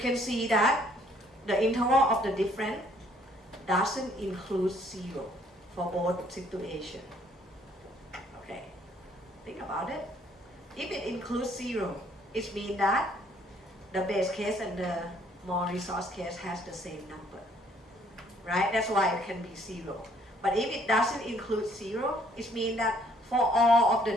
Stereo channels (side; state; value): both; normal; correlation 0.63